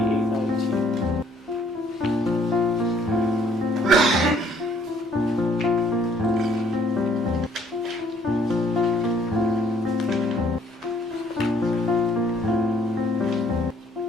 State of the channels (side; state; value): both; normal; correlation 0.63